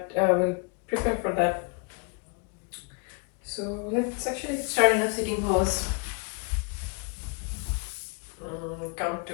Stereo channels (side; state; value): right; quieter; 35.6 dB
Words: we'll prepare for that. So let's actually start in a sitting pose. Come to